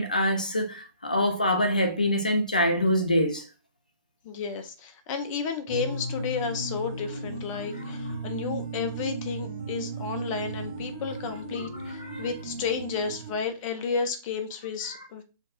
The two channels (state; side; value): inverted; both; correlation -0.53